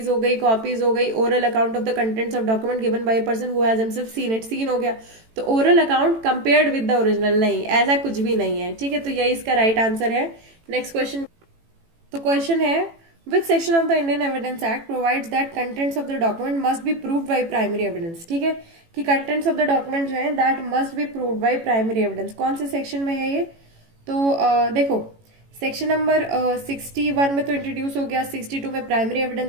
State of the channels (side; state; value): left; late; 18 ms